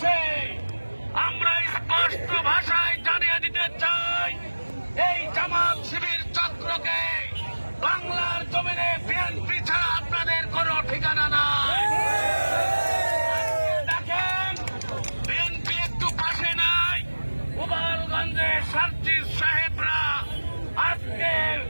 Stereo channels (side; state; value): both; inverted; correlation -1.00